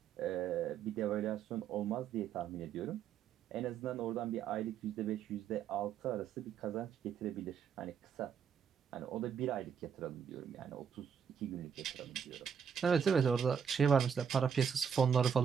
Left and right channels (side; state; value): left; quieter; 7.4 dB